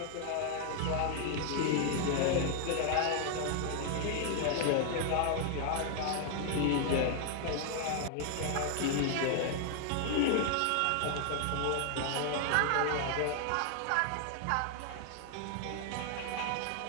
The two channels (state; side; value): different; both; correlation 0.00